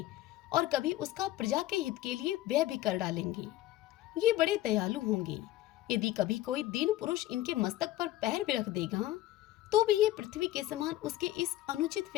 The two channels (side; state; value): right; quieter; 15.1 dB